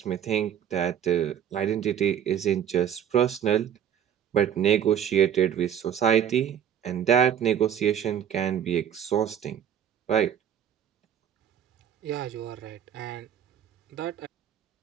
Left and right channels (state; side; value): quieter; left; 9.2 dB